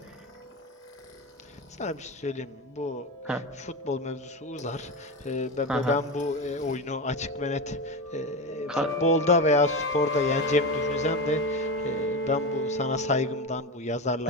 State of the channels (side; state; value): both; normal; correlation 0.19